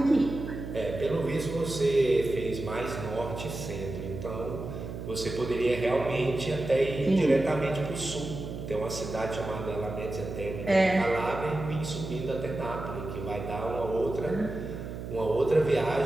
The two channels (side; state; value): right; noise; hum, 8 dB below the sound